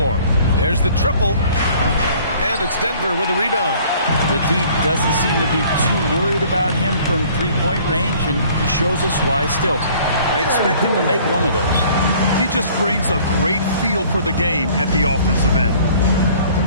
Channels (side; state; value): both; inverted; correlation -0.54